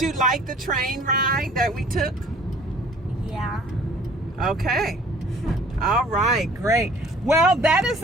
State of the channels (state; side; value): normal; both; correlation 0.53